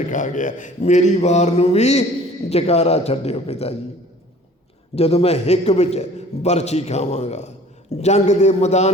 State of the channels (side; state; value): both; normal; correlation 0.49